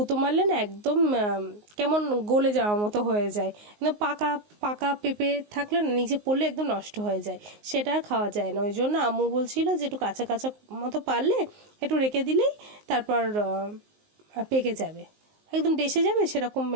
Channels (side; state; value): left; late; 19 ms